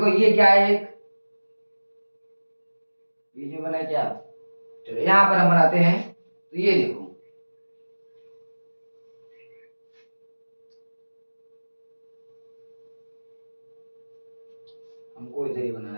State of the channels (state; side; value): inverted; both; correlation -1.00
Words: ये क्या है, एक बीच में बना है क्या? चलो यहाँ पर हम बनाते हैं। तो ये देखो, हमको इधर ही बनाना